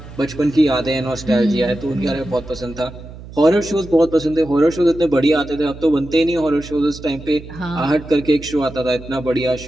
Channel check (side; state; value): right; noise; hum, 15 dB below the sound